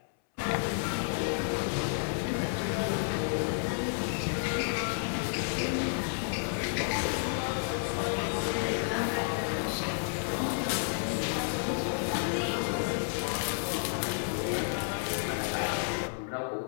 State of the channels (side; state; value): right; silent; 57 dB below the other